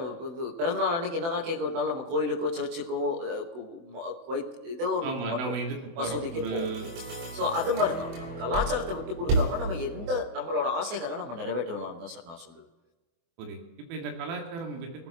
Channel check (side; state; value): left; late; 24 ms